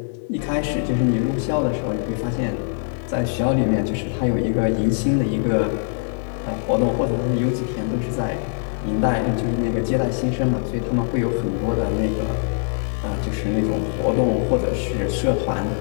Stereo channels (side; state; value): right; silent; digital silence